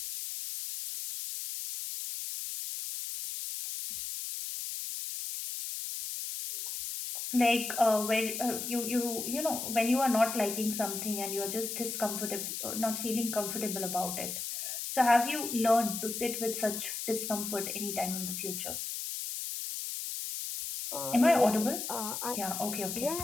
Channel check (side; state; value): left; noise; hiss, 5 dB below the sound